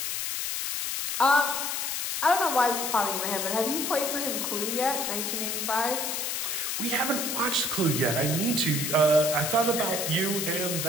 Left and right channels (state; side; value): noise; left; hiss, 1 dB below the sound